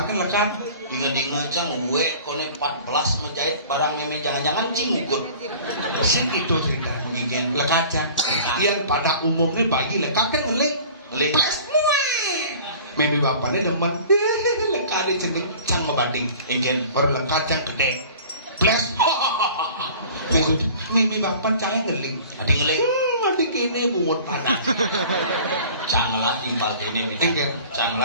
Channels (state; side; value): inverted; both; correlation -0.45